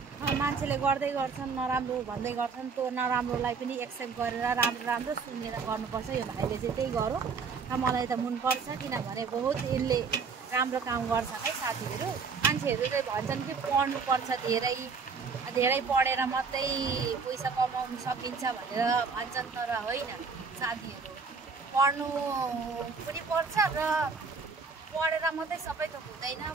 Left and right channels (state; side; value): quieter; left; 5.1 dB